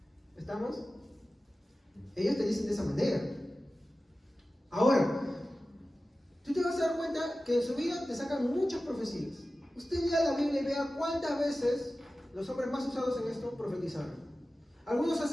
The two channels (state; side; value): normal; both; correlation 0.95